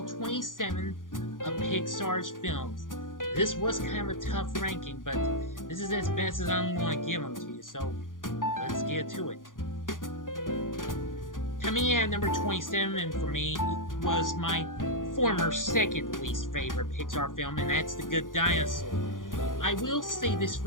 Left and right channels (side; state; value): right; late; 0.89 ms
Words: of Pixar's films. This was kind of a tough ranking, but this is as best as I'm going to give them to you, so let's get to it. Coming in at number 27 for me was my former second least favorite Pixar film, and that's The Good Dinosaur. I will say this